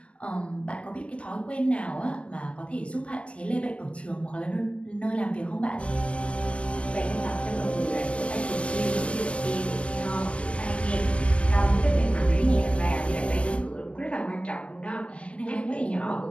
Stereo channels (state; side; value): late; right; 0.061 ms